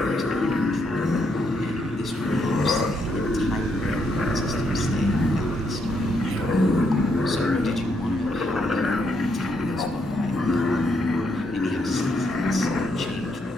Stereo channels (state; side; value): normal; both; correlation 0.76